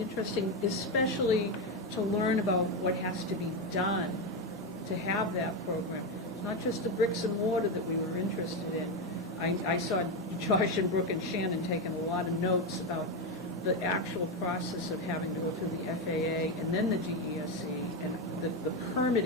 especially to learn about what has to be done to have that program. It's not just the bricks and mortar that we were interested in. I saw Josh and Brooke and Shannon taking a lot of notes about the actual process of having to go through the FAA and then the DESE, and the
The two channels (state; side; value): normal; both; correlation 0.10